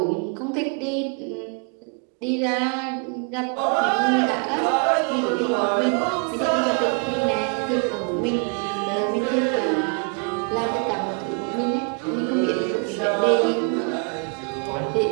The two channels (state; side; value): quieter; left; 38.7 dB